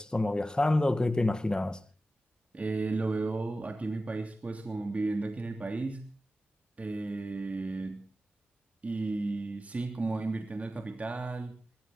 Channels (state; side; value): normal; both; correlation 0.94